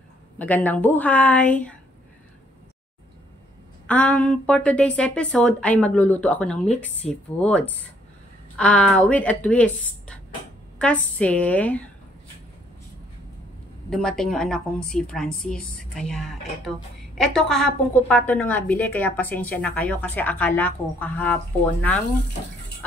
Magandang buhay. For today's episode ay magluluto ako ng mixed seafoods. With a twist. Kasi dumating yung anak kong si Francis. Kaya ito kahapon ko pa ito nabili. Kaya pasensya na kayo kasi akala ko kahapon ng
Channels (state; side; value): normal; both; correlation 0.66